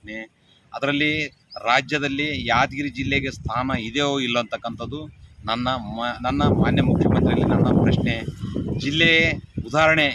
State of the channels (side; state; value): both; identical; correlation 1.00